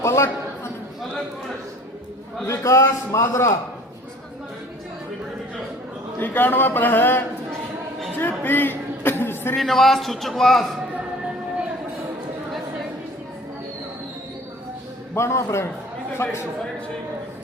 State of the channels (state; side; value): normal; both; correlation 0.48